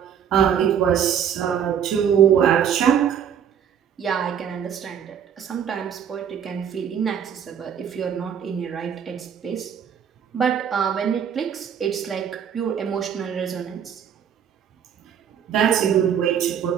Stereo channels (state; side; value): quieter; left; 8.4 dB